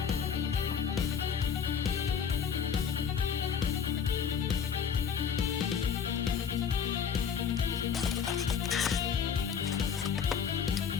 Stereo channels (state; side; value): quieter; right; 7.2 dB